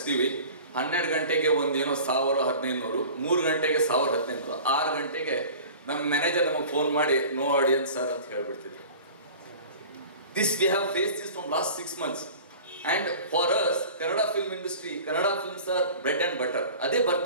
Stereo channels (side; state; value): both; inverted; correlation -0.41